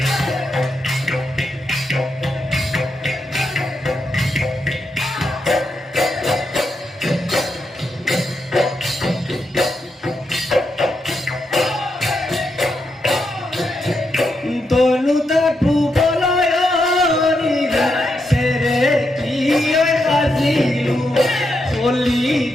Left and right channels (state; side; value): normal; both; correlation 0.82